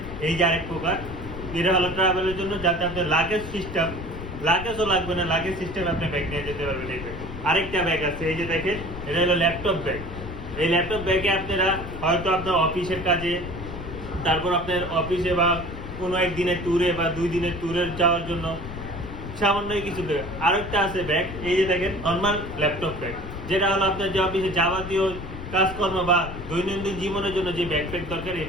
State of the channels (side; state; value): left; noise; rumble, 10 dB below the sound